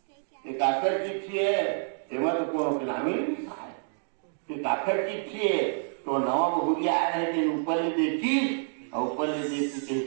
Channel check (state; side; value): silent; left; digital silence